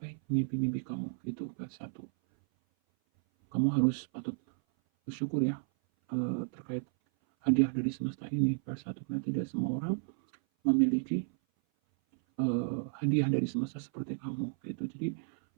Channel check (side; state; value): left; silent; 56 dB below the other